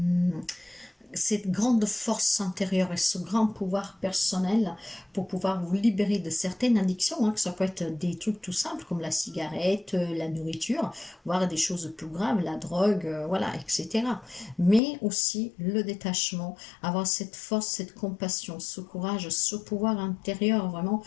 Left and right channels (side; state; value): right; drops out; at 14.8 s